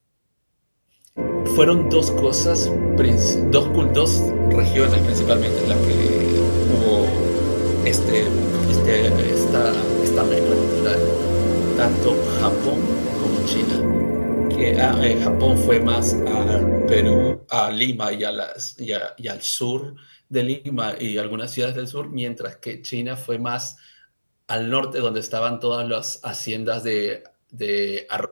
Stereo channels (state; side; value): inverted; both; correlation -1.00